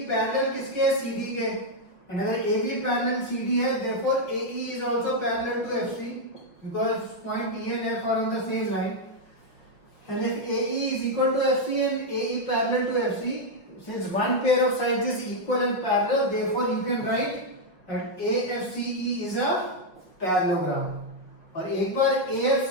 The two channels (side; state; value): right; late; 5.3 ms